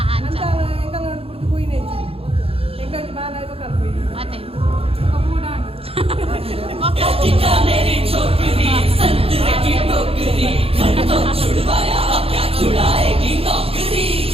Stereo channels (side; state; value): left; late; 0.28 ms